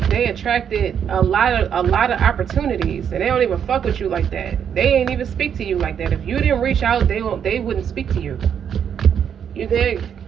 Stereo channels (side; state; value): left; quieter; 8.2 dB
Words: they attracted a lot of opportunities, and they don't even fuck with you like that. They ain't even speak to you like that. If you didn't reach out, they wouldn't speak to you. You dig?